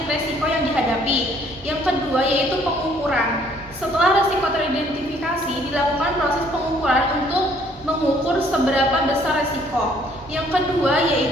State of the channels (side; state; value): both; normal; correlation 0.62